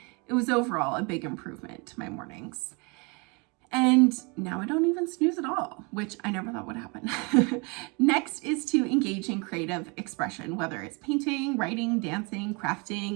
it was overall a big improvement to my mornings. And now I don't even snooze at all, which I never thought would happen. Next is to engage in creative expression, whether it's painting, writing, dancing,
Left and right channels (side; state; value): left; quieter; 30.3 dB